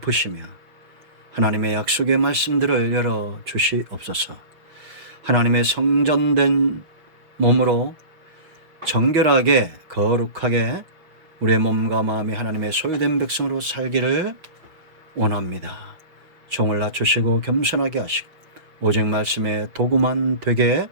하나님의 약속의 말씀들을 열어주시옵소서. 하나님의 성전된 몸으로 정결하게 거룩하게 우리의 몸과 마음이 하나님의 소유된 백성으로 살기를 원합니다. 종을 낮추시고 겸손하게 하시고 오직 말씀의 도구만 되게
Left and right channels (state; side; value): late; left; 5.4 ms